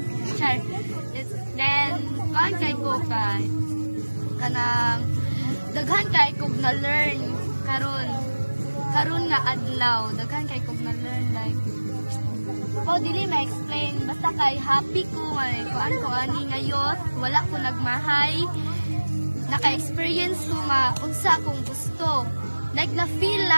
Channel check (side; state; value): both; inverted; correlation -1.00